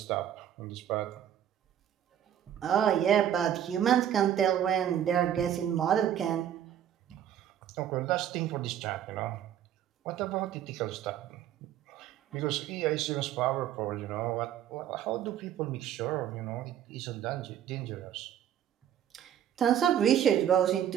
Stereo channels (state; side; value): quieter; left; 10.3 dB